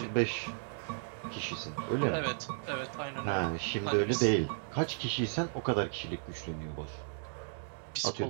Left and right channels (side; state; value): left; silent; digital silence